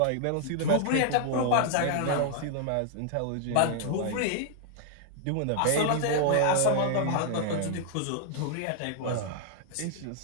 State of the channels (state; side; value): different; both; correlation -0.01